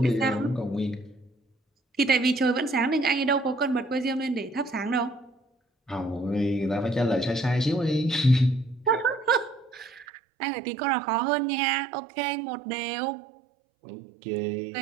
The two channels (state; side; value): drops out; left; at 10.1 s